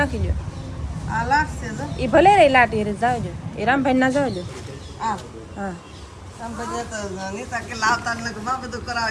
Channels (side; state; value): both; identical; correlation 1.00